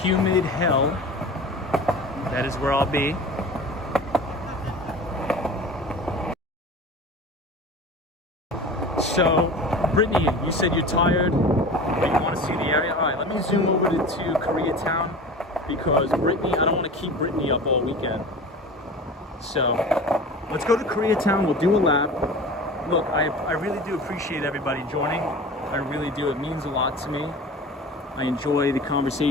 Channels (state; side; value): normal; both; correlation 0.36